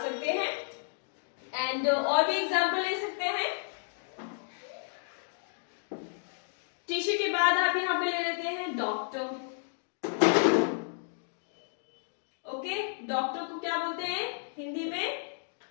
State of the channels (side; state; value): right; silent; digital silence